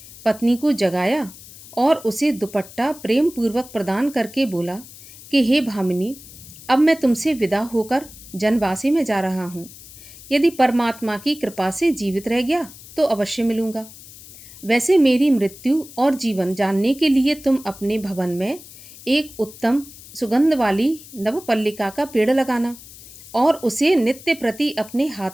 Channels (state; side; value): noise; left; hiss, 18 dB below the sound